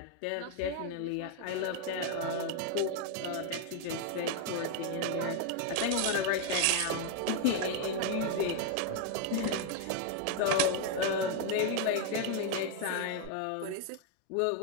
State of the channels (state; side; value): different; both; correlation 0.01